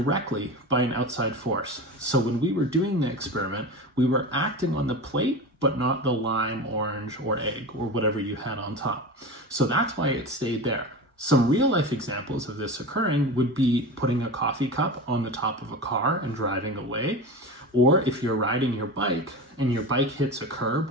by an outside force. So when we were doing the experiment, we were acting on the plate, but not the lime, orange, or egg, or whatever you had on top. So that's why it stayed there. Some real life examples of this occurring would be putting a coffee cup on the top of a car and driving away. Or if you're riding your bike and your bike hits a curb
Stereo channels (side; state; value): both; normal; correlation 0.27